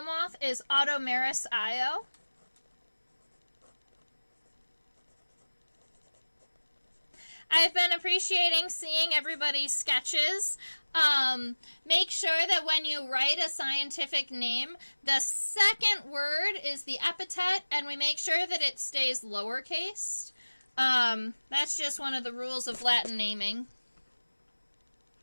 moth is Automeris io. I've been appreciating seeing everybody's sketches. Make sure that when you write a scientific name, the second word is the epithet, and we make sure that it stays lowercase. That's just one of the rules of Latin naming.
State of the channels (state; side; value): inverted; both; correlation -1.00